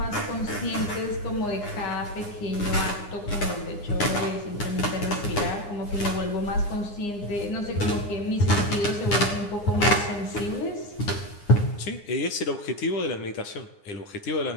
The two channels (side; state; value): right; late; 9.7 ms